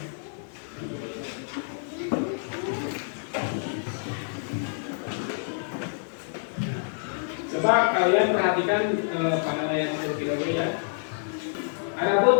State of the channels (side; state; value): right; silent; digital silence